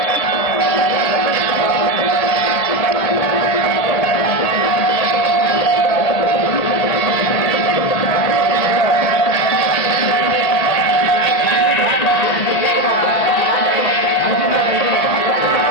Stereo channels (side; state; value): right; late; 1.8 ms